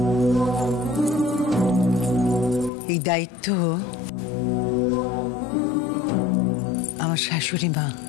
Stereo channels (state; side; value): drops out; right; at 2.7 s